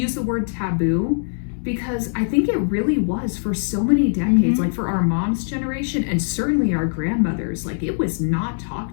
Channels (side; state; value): right; silent; digital silence